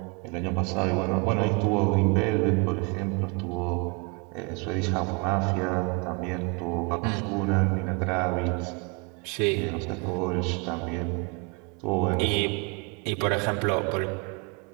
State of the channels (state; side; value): quieter; left; 31.3 dB